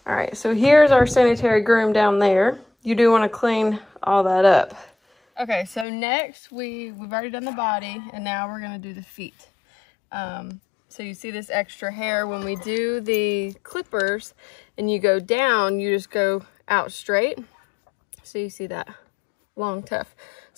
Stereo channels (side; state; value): right; drops out; at 5.9 s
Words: All right, so here's our sanitary groom down there. You do want to clean all that up. Okay, so next we've already done the body, and now we're gonna do the feet. So you see this extra hair when we do the clippers, and you go down, you just go out straight. So you see that long tuft.